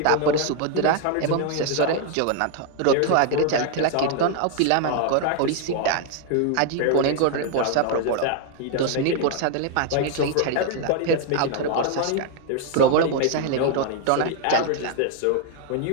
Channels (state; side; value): different; both; correlation 0.01